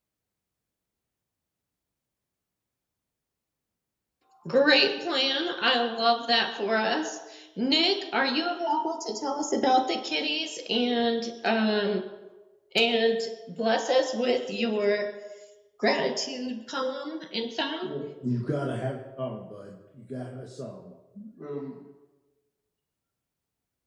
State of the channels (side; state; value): both; identical; correlation 1.00